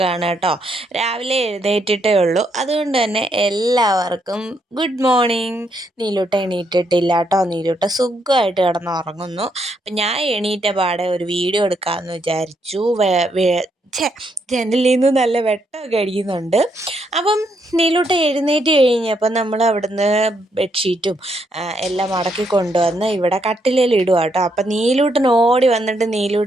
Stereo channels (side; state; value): both; normal; correlation 0.76